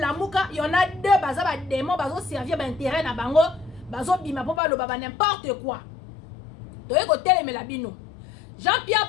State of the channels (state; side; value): drops out; right; at 4.6 s